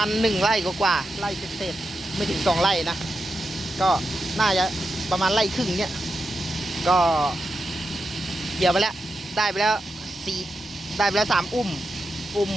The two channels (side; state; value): both; normal; correlation 0.88